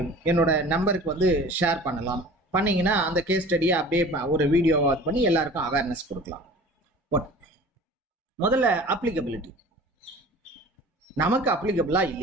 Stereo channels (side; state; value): both; normal; correlation 0.43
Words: என்னோட நம்பருக்கு ஷேர் பண்ணலாம். பண்ணீங்கன்னா அந்த கேஸ் ஸ்டடியை அப்படியே ஒரு வீடியோவா பண்ணி எல்லாருக்கும் அவேர்னஸ் கொடுக்கலாம். முதல்ல அப்ளிகபிலிட்டி. நமக்கு அப்ளிகபிளா